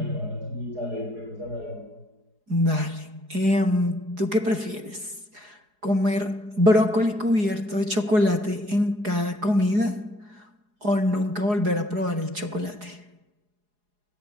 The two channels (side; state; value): left; late; 4.8 ms